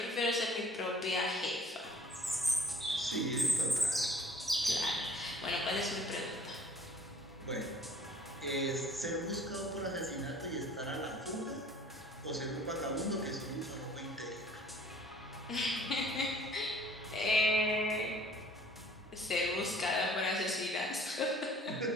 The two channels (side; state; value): both; normal; correlation 0.54